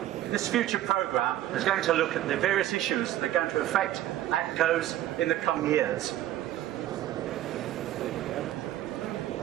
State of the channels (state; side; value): quieter; left; 13.5 dB